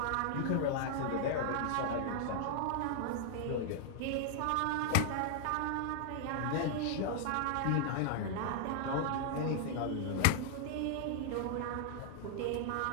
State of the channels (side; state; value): both; different; correlation 0.00